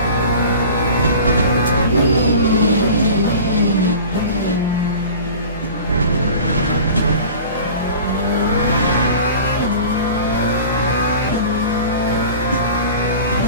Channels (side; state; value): both; inverted; correlation -0.39